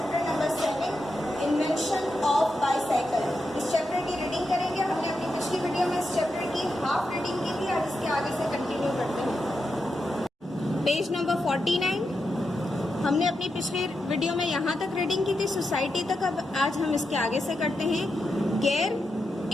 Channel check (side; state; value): both; normal; correlation 0.87